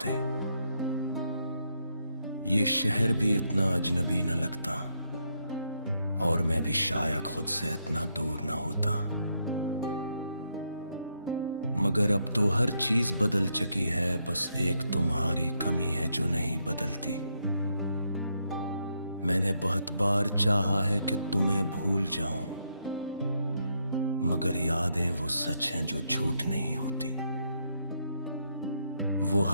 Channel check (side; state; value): both; inverted; correlation -0.78